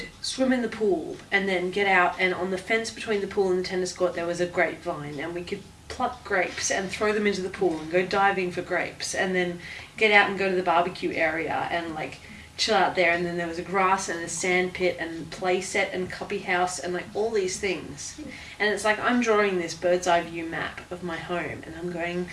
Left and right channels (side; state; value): both; identical; correlation 1.00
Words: swim in the pool and then get out, and on the fence between the pool and the tennis court there was a grapevine, and we could pluck grapes and throw them into the pool and go diving for grapes, and then get out and go to the barbecue area and like chill out there. And then there was a grass and a sand pit and play set and cubby house and like all these things. And it's like I'm drawing this bird's eye view map of my home, and I'm going